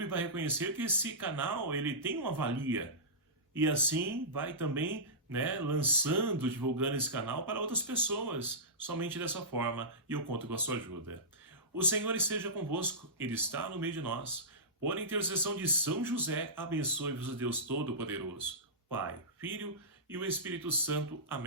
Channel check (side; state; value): both; normal; correlation -0.17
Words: vai reconhecer que esse canal ele tem uma valia. E assim vai também lançando, divulgando esse canal para outras pessoas, somente dessa forma, e eu conto com a sua ajuda. O Senhor esteja convosco, Ele está no meio de nós. Por intercessão de São José, abençoe-vos o Deus Todo-Poderoso, Pai, Filho e o Espírito Santo.